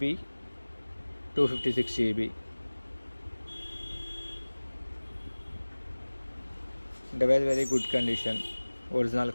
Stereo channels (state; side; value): inverted; both; correlation -1.00